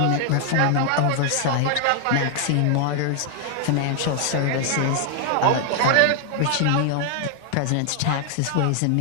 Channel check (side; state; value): both; different; correlation 0.00